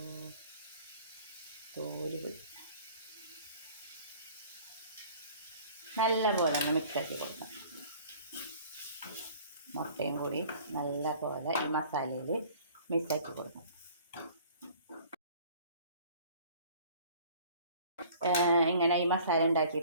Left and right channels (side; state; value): both; inverted; correlation -0.50